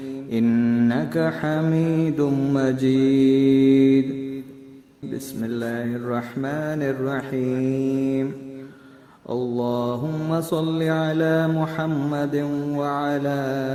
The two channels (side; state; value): both; identical; correlation 1.00